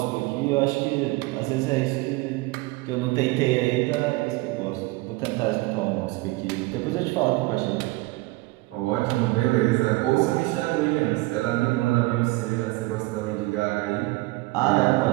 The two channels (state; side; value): quieter; left; 21.7 dB